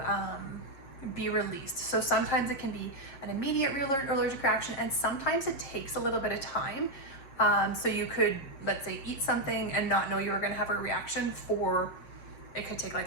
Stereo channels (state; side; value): late; right; 7.5 ms